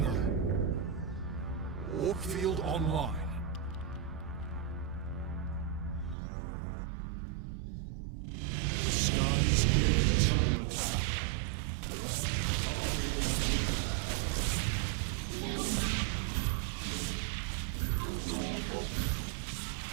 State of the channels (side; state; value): left; drops out; at 6.2 s